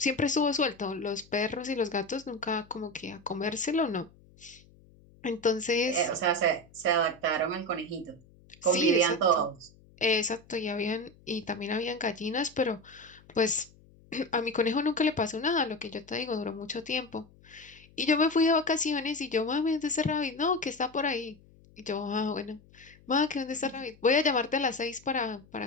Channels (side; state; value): left; noise; hum, 26 dB below the sound